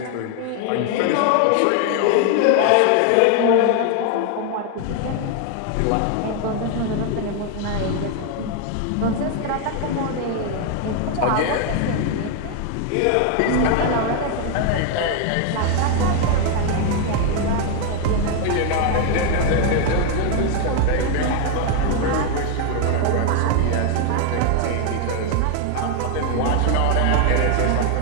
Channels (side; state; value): both; different; correlation 0.01